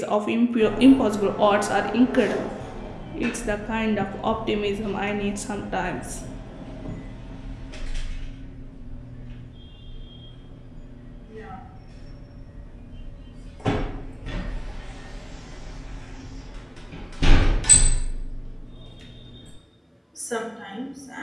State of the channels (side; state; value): both; identical; correlation 1.00